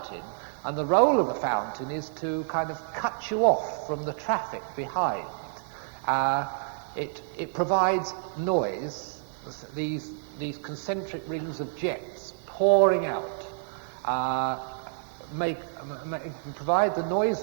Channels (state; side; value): silent; left; digital silence